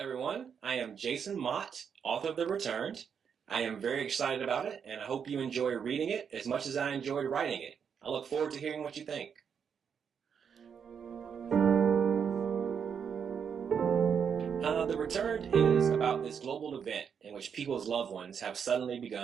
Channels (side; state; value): left; quieter; 7.1 dB